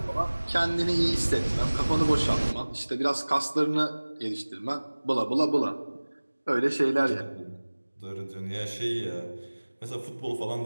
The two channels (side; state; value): both; inverted; correlation -1.00